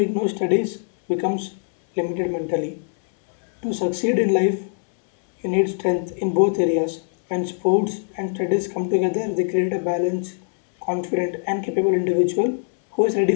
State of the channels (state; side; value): silent; right; digital silence